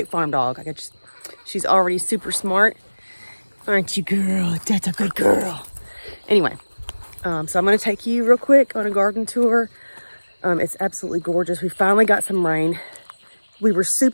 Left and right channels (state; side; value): inverted; both; correlation -1.00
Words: farm dog. She's already super smart. Aren't you, girl? That's a good girl. Anyway, so I'm going to take you real quick on a garden tour. It's absolutely gorgeous. We finally got some rain. We were